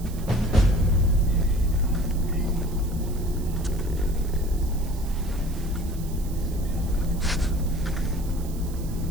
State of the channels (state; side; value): noise; right; hiss, 18 dB below the sound